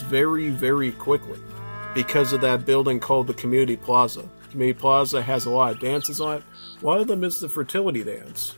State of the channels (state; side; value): inverted; both; correlation -1.00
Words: very, very quickly because of that building called the Community Plaza. Community Plaza has a lot of dances on it. One of them is the fertility dance.